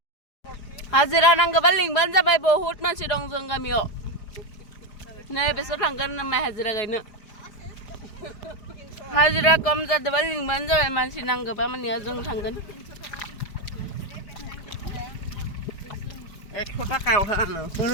हाजिरा नांगौबा लिंबानो जाबाय बहुत मानसि दं जों गामियाव नै बेसोर थांगोन नामा हाजिरा गायनो हाजिरा कम जादोंबा लिंबानो जाबाय मानसि नांगौबा माने जों थांगोन 100 थाखायाव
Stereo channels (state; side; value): late; right; 5.0 ms